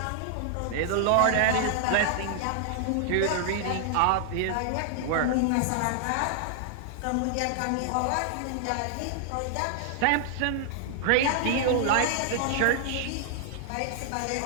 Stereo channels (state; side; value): different; both; correlation -0.01